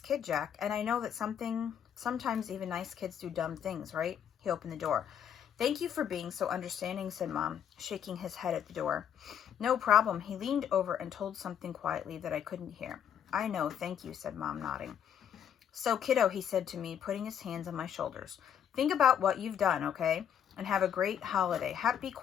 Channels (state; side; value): quieter; right; 8.9 dB